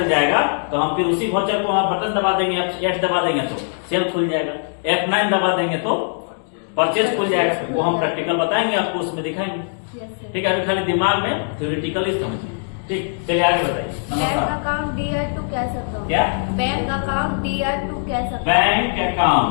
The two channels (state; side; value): silent; right; digital silence